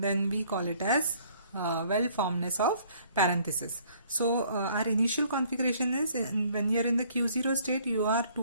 we call it as well formedness of parentheses. So our initial configuration is when you are in the Q0 state, you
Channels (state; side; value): inverted; both; correlation -0.59